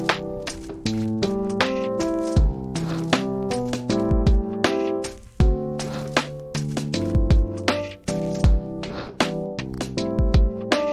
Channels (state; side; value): identical; both; correlation 1.00